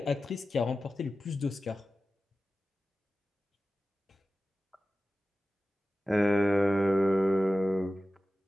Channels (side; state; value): both; normal; correlation 0.94